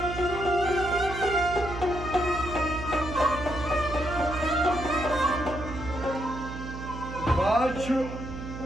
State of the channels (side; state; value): right; noise; hum, 9 dB below the sound